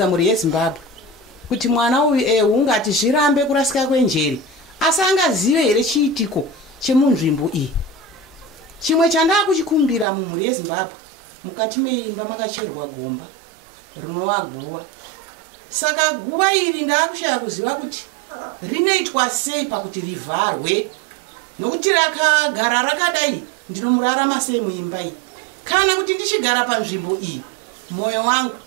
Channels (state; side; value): drops out; left; at 10.1 s